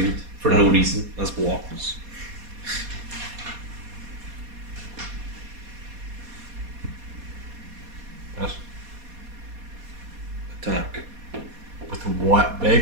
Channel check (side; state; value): left; late; 4.2 ms